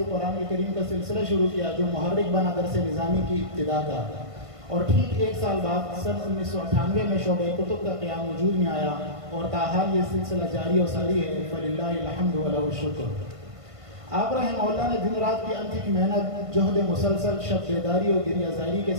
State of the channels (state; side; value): late; left; 1.5 ms